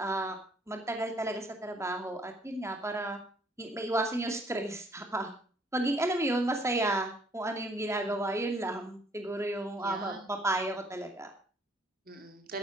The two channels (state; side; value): normal; both; correlation 0.63